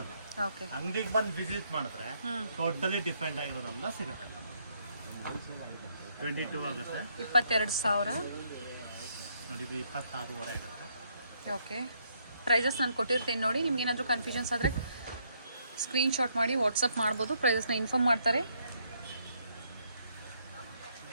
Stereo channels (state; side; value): inverted; both; correlation -0.71